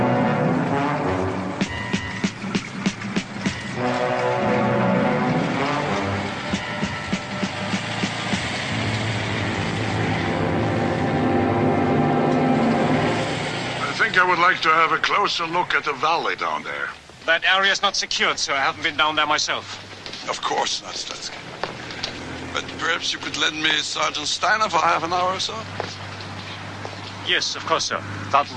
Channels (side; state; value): both; identical; correlation 1.00